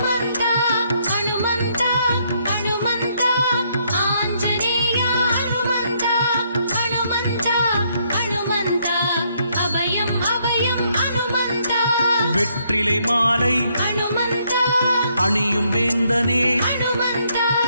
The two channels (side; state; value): both; inverted; correlation -0.72